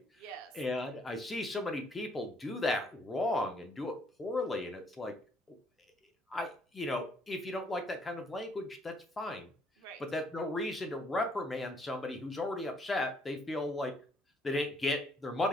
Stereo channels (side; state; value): both; normal; correlation 0.67